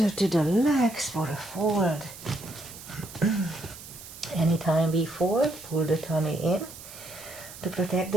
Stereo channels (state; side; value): noise; right; hiss, 15 dB below the sound